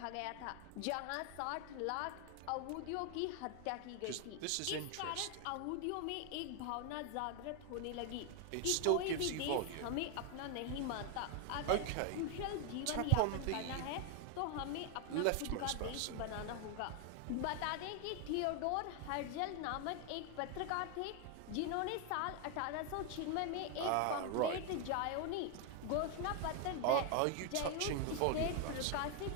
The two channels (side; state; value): both; different; correlation 0.01